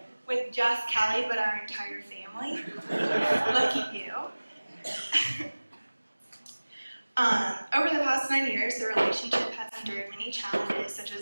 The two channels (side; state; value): both; inverted; correlation -1.00